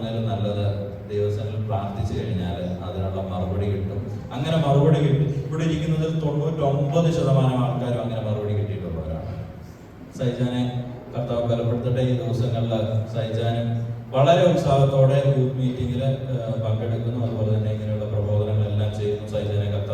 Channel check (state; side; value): identical; both; correlation 1.00